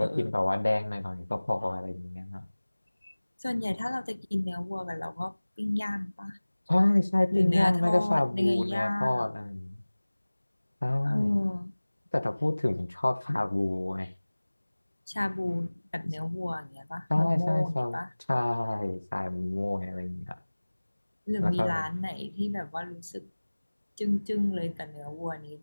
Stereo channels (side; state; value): both; inverted; correlation -1.00